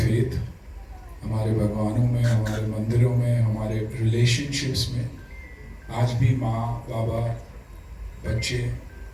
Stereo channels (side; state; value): both; identical; correlation 1.00